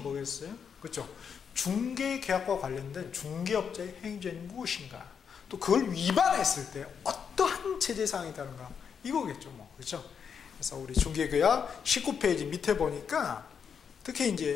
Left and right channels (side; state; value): right; quieter; 6.9 dB